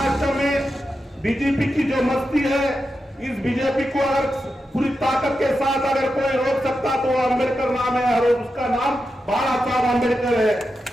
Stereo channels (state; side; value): normal; both; correlation 0.89